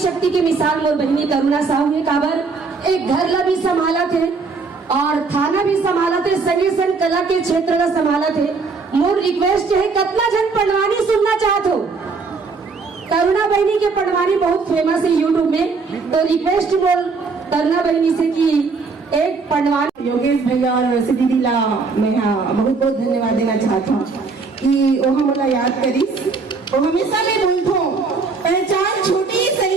के मिसाल मोर बहनी करुणा साहू ने काबर एक घर ला भी संभाला थे और थाना भी संभाला थे, संगे संग कला के क्षेत्र ला संभाला थे। मोर रिक्वेस्ट है कितना जन पढ़वानी सुनना चाहत हो। करुणा बहनी के पढ़वानी बहुत फेमस है यूट्यूब में, तो रिक्वेस्ट मोर करुणा बहनी से कि एक पढ़वानी। योगेश भैया और वैसे दीदी ला मैं बहुत बहुत धन्यवाद देना चाहता हूँ कि वो हमला याद करीस। वो हमेशा मैं बोलता हूँ पहचान छोटी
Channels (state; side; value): quieter; left; 4.5 dB